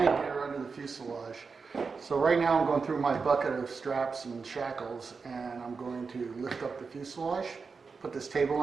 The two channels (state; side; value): quieter; left; 4.9 dB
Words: gear under the fuselage. So right now I'm going through my bucket of straps and shackles, and I'm going to lift up the fuselage, put this table